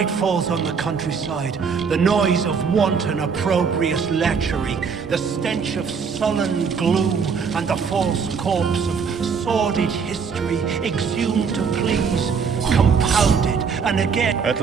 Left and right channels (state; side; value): quieter; left; 5.9 dB